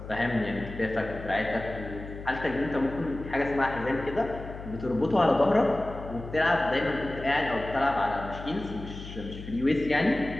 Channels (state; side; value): noise; left; hum, 11 dB below the sound